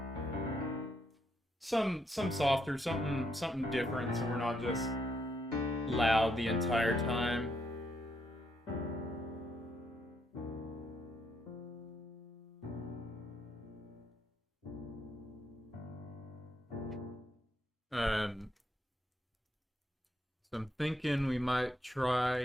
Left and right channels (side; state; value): both; normal; correlation 0.76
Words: softer, something different, so we're not just loud the entire time. Um, so I'm thinking we might